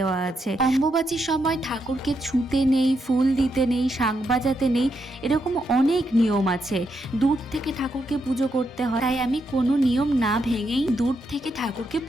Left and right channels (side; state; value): both; normal; correlation 0.81